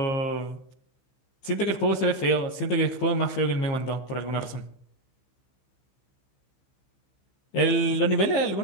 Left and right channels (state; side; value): late; right; 15 ms